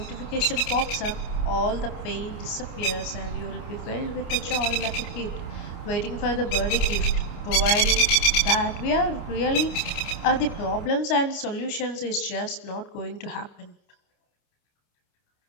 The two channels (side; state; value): right; late; 29 ms